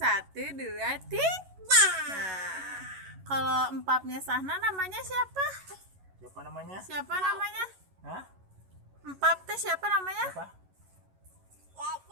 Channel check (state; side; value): late; left; 11 ms